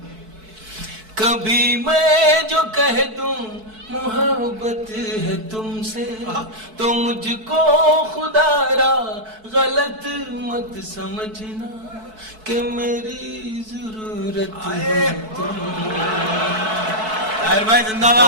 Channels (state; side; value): late; left; 4.6 ms